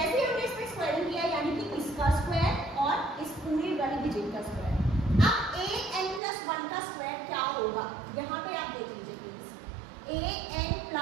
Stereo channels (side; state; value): left; drops out; at 6.2 s